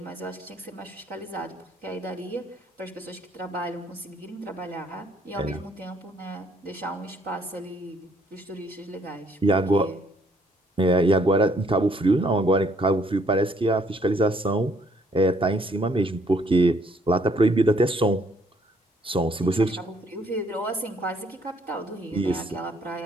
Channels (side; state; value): both; normal; correlation 0.66